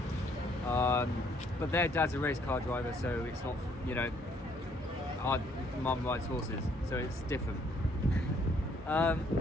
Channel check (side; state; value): both; normal; correlation 0.65